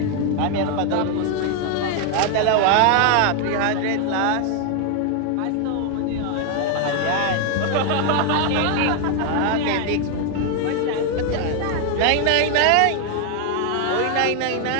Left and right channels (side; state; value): both; different; correlation 0.01